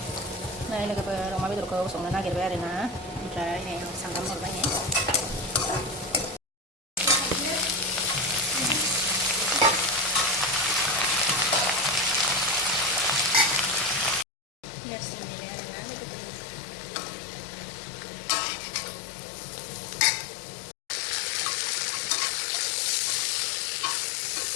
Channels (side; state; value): right; drops out; at 14.2 s